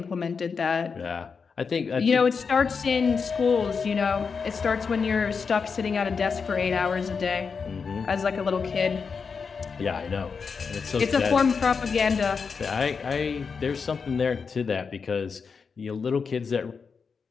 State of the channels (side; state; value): right; quieter; 5.5 dB